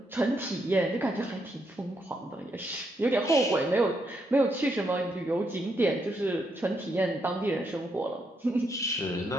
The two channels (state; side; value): normal; both; correlation 0.78